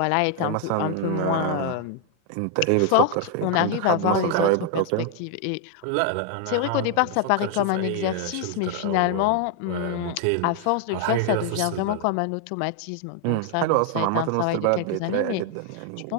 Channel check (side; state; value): both; different; correlation 0.00